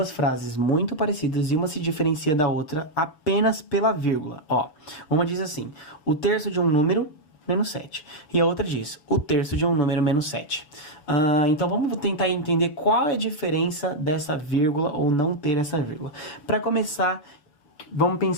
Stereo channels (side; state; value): right; late; 7.0 ms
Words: frases muito parecidas e uma se diferencia da outra apenas pela vírgula. Ó, uma diz assim: o terço de um número menos 7. E a outra diz, o terço de um número menos 7. Então vamos tentar entender qual é a diferença dessa vírgula ou não ter essa vírgula. Para começar, vamos